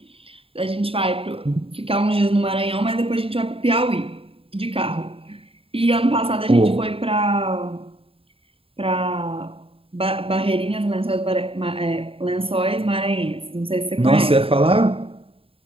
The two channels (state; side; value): late; left; 0.27 ms